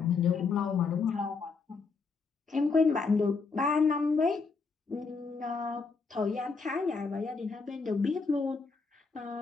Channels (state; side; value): quieter; right; 4.6 dB